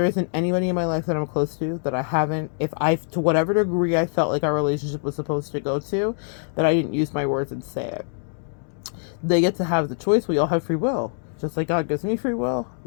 isn't anybody in my life that I'm close to that I haven't, to whatever degree I felt like our relationship was supposed to go to, that I didn't use my words and say it. They get to have the choice. We all have free will. Just like God gives me free will,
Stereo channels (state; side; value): silent; right; digital silence